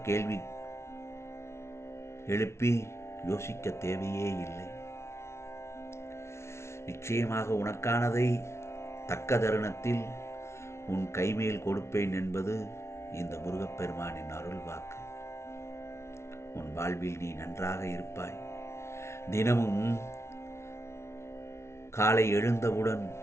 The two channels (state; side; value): late; right; 0.13 ms